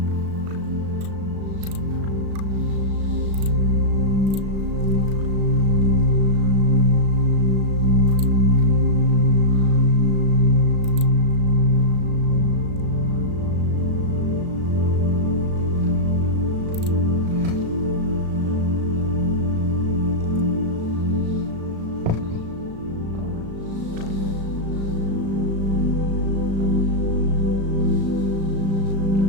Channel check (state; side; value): late; left; 36 ms